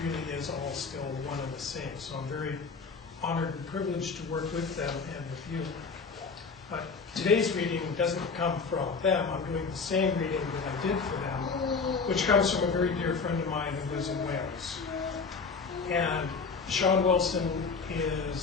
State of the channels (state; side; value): quieter; right; 4.9 dB